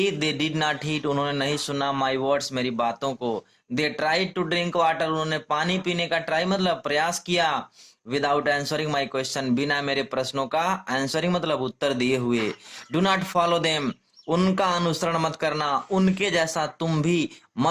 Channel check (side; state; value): both; identical; correlation 1.00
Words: दे डिड नॉट हीड, उन्होंने नहीं सुना, माई वर्ड्स मेरी बातों को। They tried to drink water, उन्होंने पानी पीने का ट्राई मतलब प्रयास किया, विदाउट आंसरिंग माई क्वेश्चन, बिना मेरे प्रश्नों का आंसरिंग मतलब उत्तर दिए हुए। डू नॉट फॉलो देम, उनका अनुसरण मत करना, उनके जैसा तुम भी